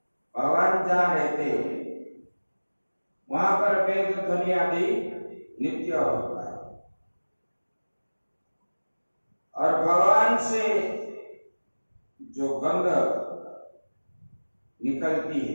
भगवान जहाँ रहते वहां पर वेद ध्वनि आदि नित्य होता है। और भगवान से जो गंध निकलती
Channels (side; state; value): both; inverted; correlation -1.00